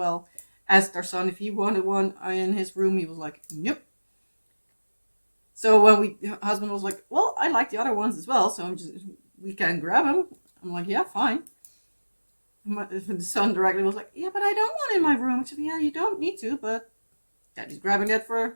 Asked our son if he wanted one in his room. He was like, nope. So when husband was like, well, I like the other ones as well, so we can grab them. I'm like, yeah, fine. The son directly was like, yeah, but I don't want it in my room. I said, yeah, you don't need to, but Daddy's grabbing that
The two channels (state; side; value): inverted; both; correlation -1.00